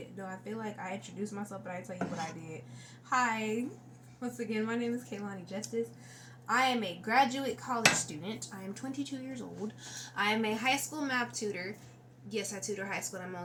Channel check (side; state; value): both; identical; correlation 1.00